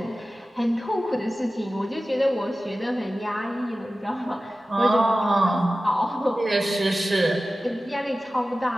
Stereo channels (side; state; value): both; normal; correlation 0.95